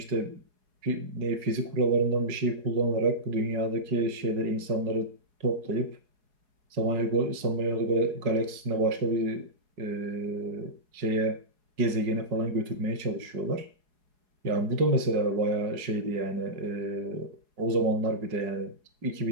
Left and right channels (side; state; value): left; late; 4.8 ms